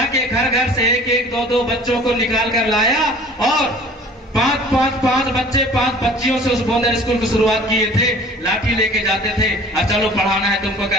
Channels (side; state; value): both; normal; correlation 0.47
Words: घर घर से एक एक दो दो बच्चों को निकाल कर लाया और पांच बच्चे 5 बच्चियों से उस बोंदर स्कूल की शुरुआत किए थे। लाठी लेके जाते थे और चलो पढ़ाना है तुमको